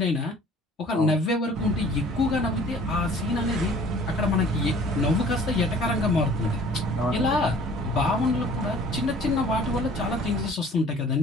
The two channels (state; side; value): normal; both; correlation 0.51